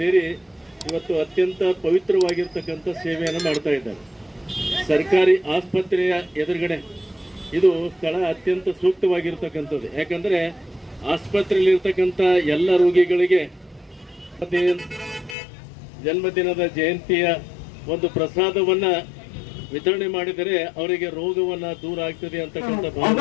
ಇವತ್ತು ಅತ್ಯಂತ ಪವಿತ್ರವಾಗಿರ್ತಕ್ಕಂಥ ಸೇವೆಯನ್ನು ಮಾಡ್ತಾ ಇದ್ದಾರೆ. ಸರ್ಕಾರಿ ಆಸ್ಪತ್ರೆಯ ಎದುರುಗಡೆ ಇದು ಸ್ಥಳ ಅತ್ಯಂತ ಸೂಕ್ತವಾಗಿರ್ತಕ್ಕಂಥದ್ದು. ಯಾಕಂದರೆ ಆಸ್ಪತ್ರೆಯಲ್ಲಿರ್ತಕ್ಕಂಥ ಎಲ್ಲ ರೋಗಿಗಳಿಗೆ ಜನ್ಮದಿನದ ಜಯಂತಿಯ ಒಂದು ಪ್ರಸಾದವನ್ನು ವಿತರಣೆ ಮಾಡಿದರೆ ಅವರಿಗೆ ರೋಗವನ್ನ ದೂರ ಆಗ್ತದೆ ಅಂತಕ್ಕಂಥ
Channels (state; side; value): drops out; right; at 15.4 s